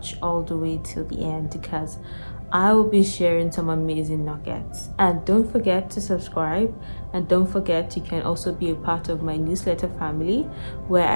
all the way till the end because I will be sharing some amazing nuggets. And don't forget to subscribe, and don't forget you can also be a part of my newsletter family where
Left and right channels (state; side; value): inverted; both; correlation -1.00